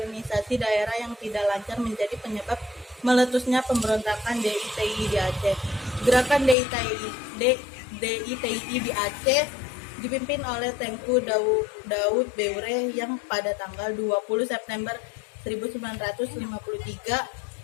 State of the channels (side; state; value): right; drops out; at 6.6 s